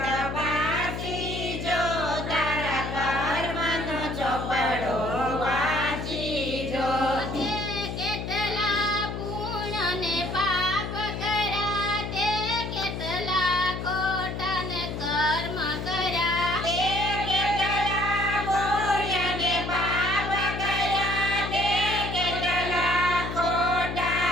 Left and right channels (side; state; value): left; noise; hum, 5 dB below the sound